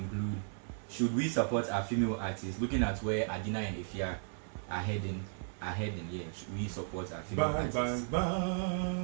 should we support our female artists? Looking at where Adina and Efya are heading, should we support our female artists?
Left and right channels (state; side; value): silent; left; 54 dB below the other